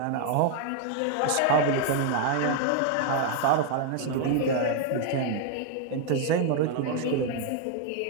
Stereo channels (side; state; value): both; different; correlation 0.00